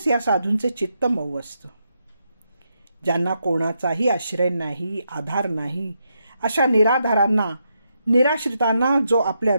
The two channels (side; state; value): both; inverted; correlation -0.82